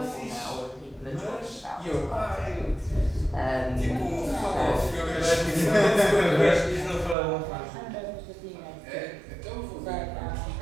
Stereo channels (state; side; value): drops out; left; at 7.2 s